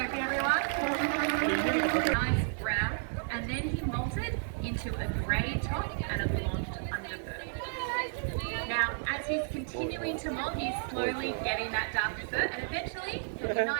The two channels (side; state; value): left; silent; digital silence